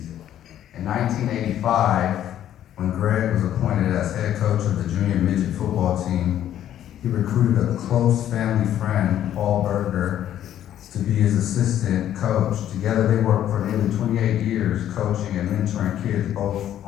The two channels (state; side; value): quieter; right; 11.3 dB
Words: In 1985, when Greg was appointed as head coach of the junior midget football team, he recruited a close family friend, Paul Berger, to be his assistant coach. Together they worked for nearly 28 years coaching and mentoring kids both